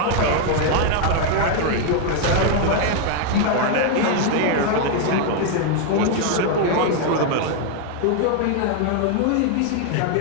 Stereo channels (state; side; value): different; both; correlation 0.00